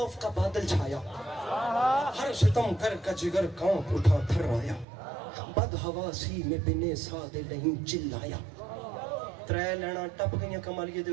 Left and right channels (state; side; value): drops out; left; at 4.9 s